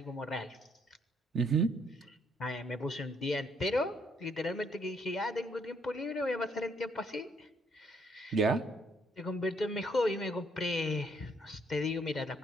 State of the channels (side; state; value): both; normal; correlation 0.69